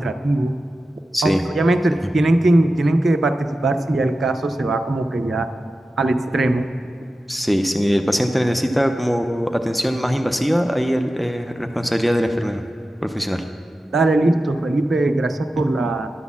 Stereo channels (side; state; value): both; normal; correlation 0.93